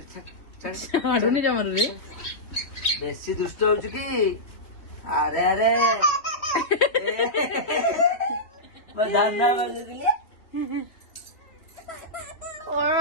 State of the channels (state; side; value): late; right; 3.3 ms